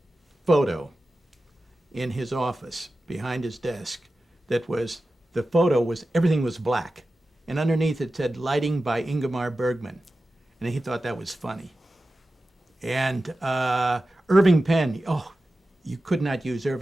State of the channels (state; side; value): normal; both; correlation 0.94